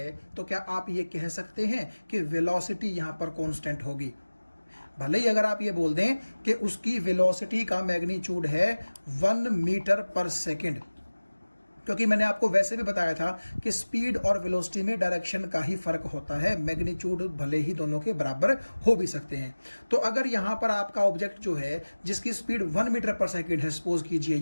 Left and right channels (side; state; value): both; inverted; correlation -1.00